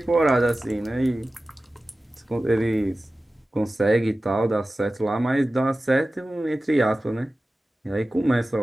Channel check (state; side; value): normal; both; correlation 0.96